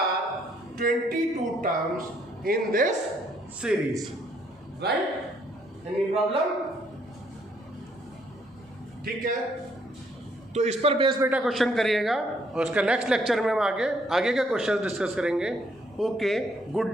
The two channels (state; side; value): normal; both; correlation 0.68